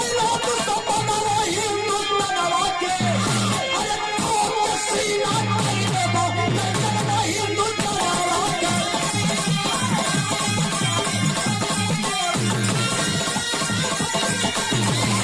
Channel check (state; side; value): noise; right; hum, 26 dB below the sound